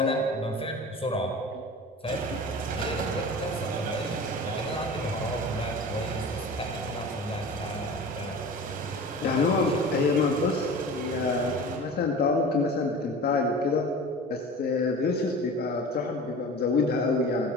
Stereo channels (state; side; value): normal; both; correlation 0.36